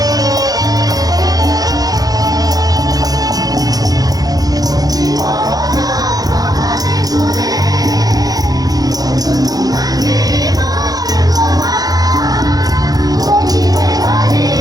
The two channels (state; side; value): late; left; 0.18 ms